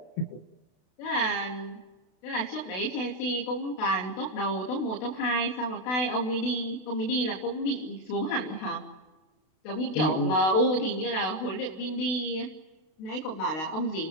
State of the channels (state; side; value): late; right; 32 ms